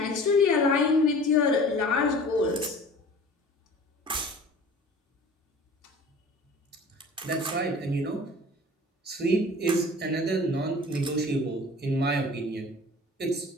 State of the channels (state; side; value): normal; both; correlation 0.43